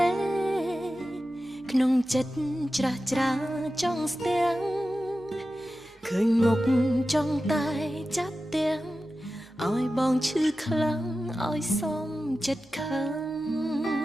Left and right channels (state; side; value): normal; both; correlation 0.94